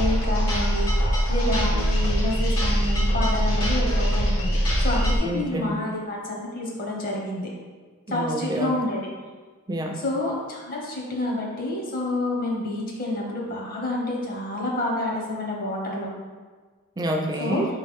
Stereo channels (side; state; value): both; normal; correlation 0.64